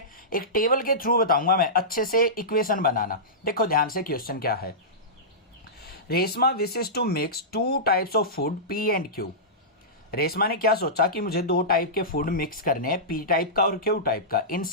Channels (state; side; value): normal; both; correlation -0.17